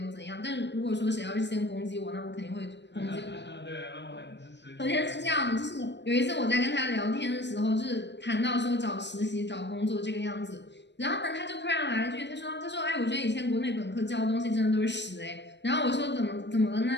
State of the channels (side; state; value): right; late; 0.51 ms